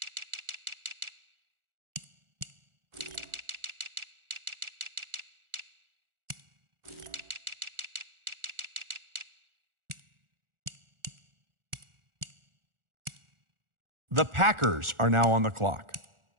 The Packers are now on the clock.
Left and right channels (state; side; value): late; left; 1.4 ms